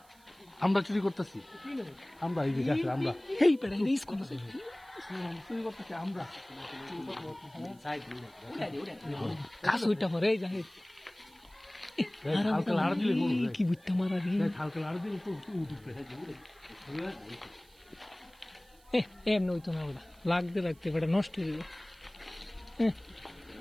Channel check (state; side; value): noise; right; hiss, 29 dB below the sound